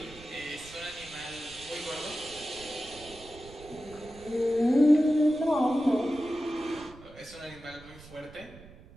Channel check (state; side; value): noise; right; rumble, 20 dB below the sound